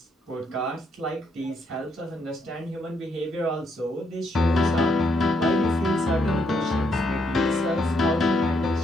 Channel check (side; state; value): both; normal; correlation 0.75